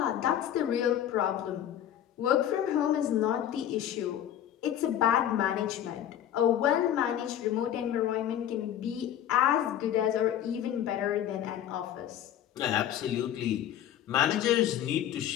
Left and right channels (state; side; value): quieter; right; 10.8 dB